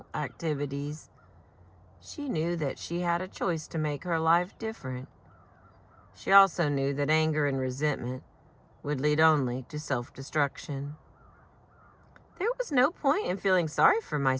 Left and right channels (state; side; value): identical; both; correlation 1.00